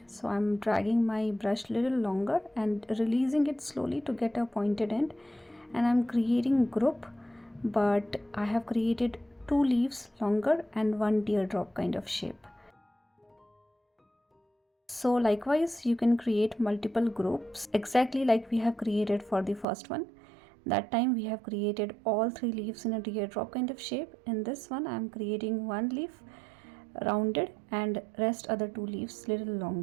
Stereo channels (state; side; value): drops out; left; at 19.7 s